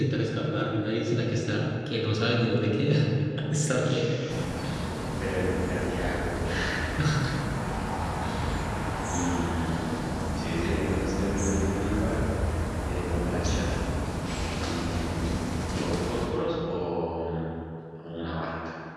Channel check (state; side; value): identical; both; correlation 1.00